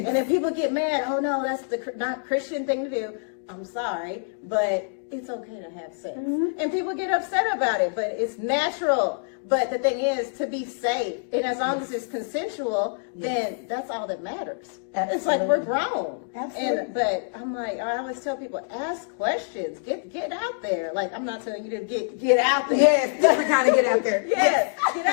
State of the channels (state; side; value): silent; right; digital silence